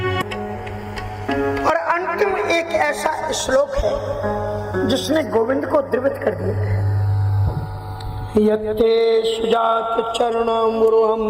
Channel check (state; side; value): identical; both; correlation 1.00